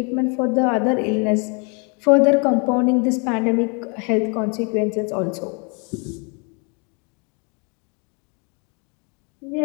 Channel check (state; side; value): quieter; right; 34.6 dB